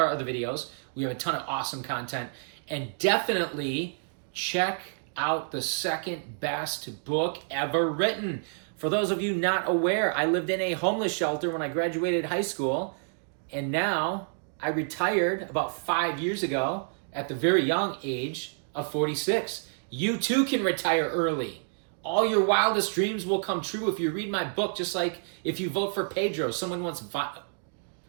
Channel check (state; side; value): silent; left; digital silence